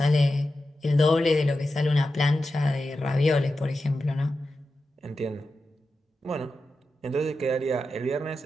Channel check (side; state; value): both; normal; correlation 0.91